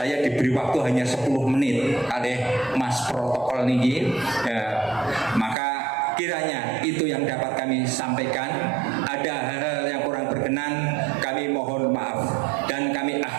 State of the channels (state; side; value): drops out; left; at 5.6 s